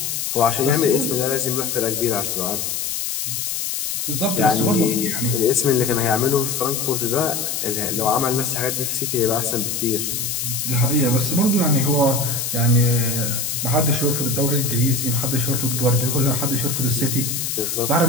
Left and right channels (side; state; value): left; noise; hiss, 2 dB below the sound